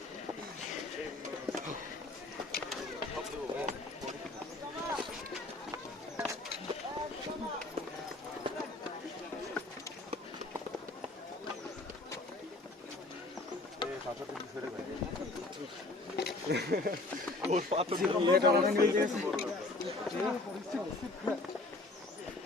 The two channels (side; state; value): right; quieter; 3.0 dB